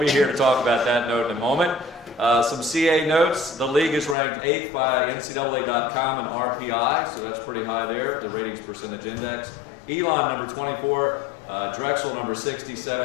here to talk about that note in a moment. Some CA notes. The league is ranked 8th by NCAA.com and RPI, so that's pretty high there, the ratings percentage index. Elon, number 24, Drexel, number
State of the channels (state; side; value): drops out; right; at 4.2 s